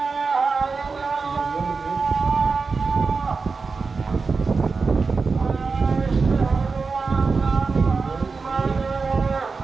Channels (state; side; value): quieter; left; 4.5 dB